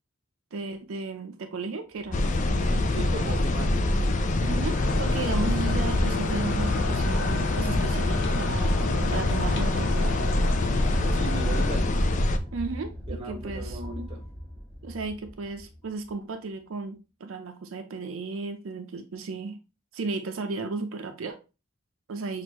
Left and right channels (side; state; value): both; normal; correlation 0.71